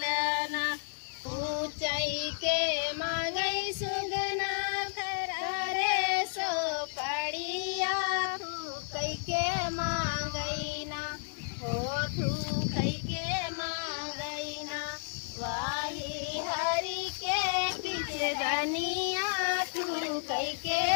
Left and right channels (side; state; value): right; silent; digital silence